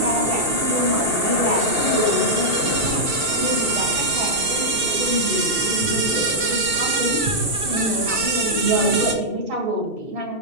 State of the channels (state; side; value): late; left; 2.7 ms